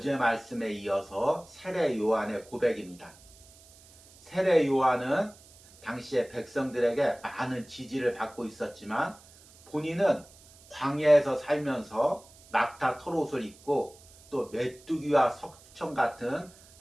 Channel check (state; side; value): noise; right; hiss, 24 dB below the sound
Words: 말씀에 이어서 세례 요한의 고백입니다. 세례 요한은 당시에 백성들에게 많은 지지를 받고 있었지만 본인은 광야에서 살면서 낙타 털옷을 입고 또 메뚜기와 석청 같은